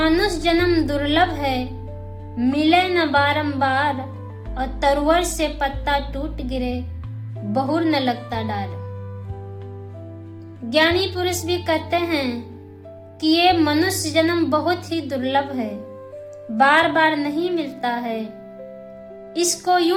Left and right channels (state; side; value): identical; both; correlation 1.00